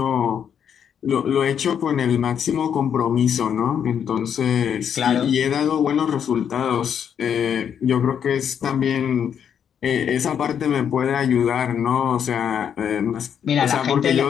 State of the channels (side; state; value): right; quieter; 8.3 dB